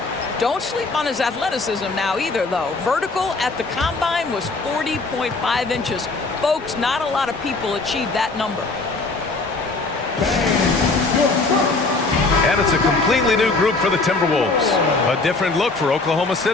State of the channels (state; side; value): quieter; right; 3.6 dB